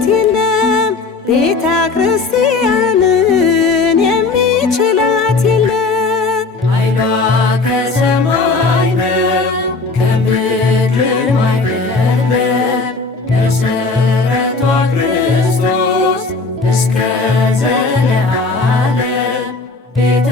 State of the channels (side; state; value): right; quieter; 4.0 dB